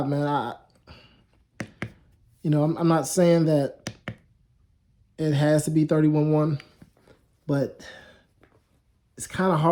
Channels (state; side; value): identical; both; correlation 1.00